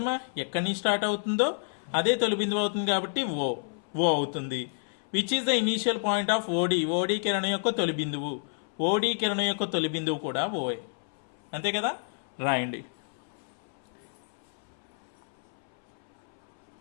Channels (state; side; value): silent; right; 58 dB below the other